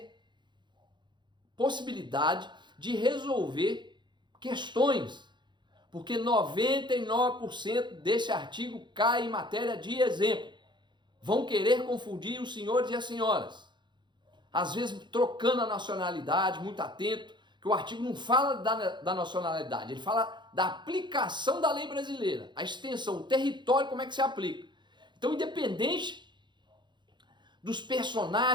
possibilidade de resolver questões. Porque 99% desse artigo cai em matéria de exemplo. Vão querer confundir os senhores e as senhoras. Às vezes trocando a nacionalidade, muito atento. Que o artigo não fala da nacionalidade, ele fala da aplicação da lei brasileira. A extensão, o território, como é que se aplica. Então, independente dos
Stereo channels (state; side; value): late; left; 0.22 ms